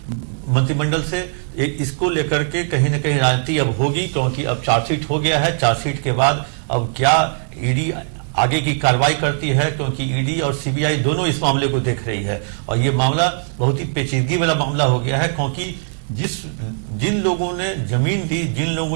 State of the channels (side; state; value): left; silent; 61 dB below the other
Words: मंत्रिमंडल से। इसको लेकर के कहीं ना कहीं राजनीति अब होगी, क्योंकि अब चार्जशीट हो गया है। चार्जशीट के बाद अब क्या ईडी आगे की कार्रवाई करती है, क्योंकि ईडी और सीबीआई दोनों इस मामले को देख रही है। और ये मामला बहुत ही पेचीदगी वाला मामला हो गया है, क्योंकि जिन लोगों ने जमीन दी, जिन